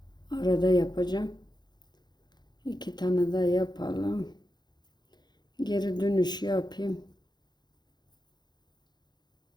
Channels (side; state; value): right; late; 0.21 ms